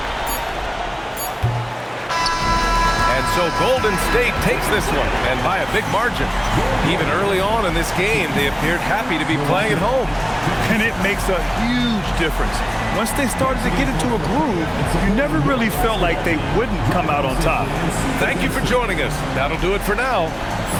So Golden State takes this one, and by a big margin. Even early on in this game, they appeared happy to be playing at home. And it makes a huge difference. Once they started to get into a groove, you never really felt like they wouldn't come out on top. Thank you for joining us. That'll do it for now.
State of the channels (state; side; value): identical; both; correlation 1.00